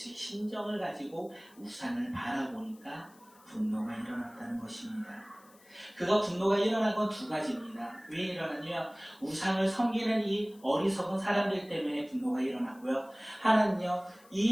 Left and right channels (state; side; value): noise; left; hiss, 27 dB below the sound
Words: 심정을 가지고 우상을 바라보니까 분노가 일어났다는 것입니다. 그가 분노가 일어난 건 두 가지입니다. 왜 일어났냐? 우상을 섬기는 이 어리석은 사람들 때문에 분노가 일어났고요. 하나는요,